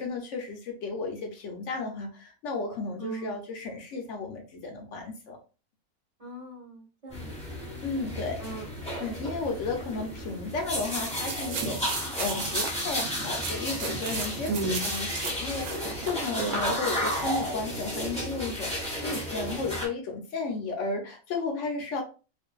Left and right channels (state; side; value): normal; both; correlation 0.02